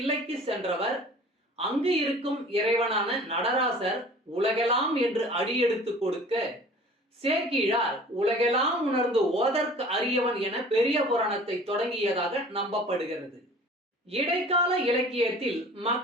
சென்றவர் அங்கு இருக்கும் இறைவனான நடராசர் உலகெல்லாம் என்று அடியெடுத்து கொடுக்க சேக்கிழார் உலகெல்லாம் உணர்ந்து ஓதற்கு அரியவன் என பெரிய புராணத்தை தொடங்கியதாக நம்பப்படுகிறது. இடைக்கால இலக்கியத்தில்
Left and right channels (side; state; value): both; normal; correlation 0.46